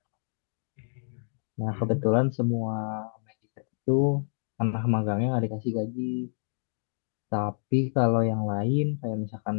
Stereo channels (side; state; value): right; silent; 59 dB below the other